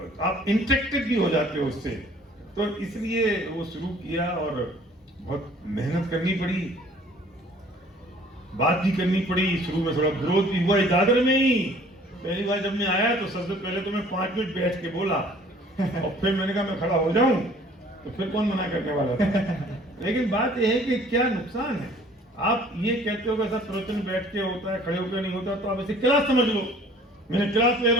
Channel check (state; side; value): normal; both; correlation 0.53